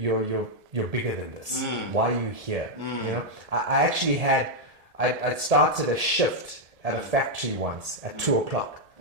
bigger than this. Why are you here? You know, I actually had I started a shift at a factory once at 2:00.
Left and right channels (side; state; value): left; late; 1.7 ms